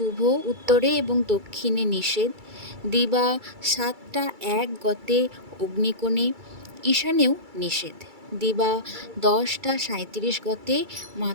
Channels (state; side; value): late; left; 2.3 ms